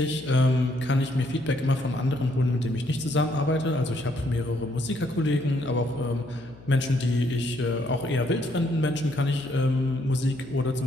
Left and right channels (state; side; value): noise; left; hum, 21 dB below the sound